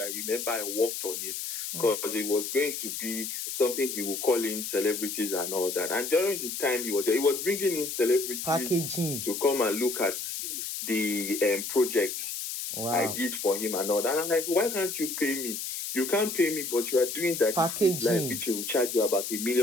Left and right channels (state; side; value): noise; left; hiss, 5 dB below the sound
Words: remember I worked on it because it was going to be something he would call in celebrities and all that. And during the time he was there, he was bringing in celebrities packaging to come and look at the project I did for him and all that. And I'm like, why can't you pay me? You can't pay me, but you are doing that packaging, which will charge you about ₦1